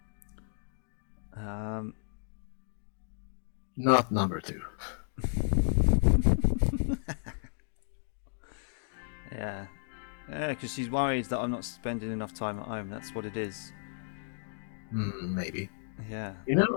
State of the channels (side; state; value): right; silent; digital silence